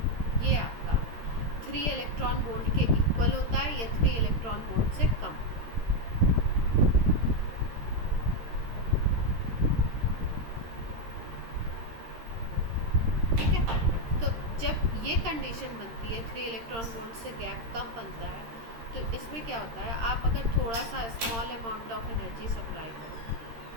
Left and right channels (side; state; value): left; late; 13 ms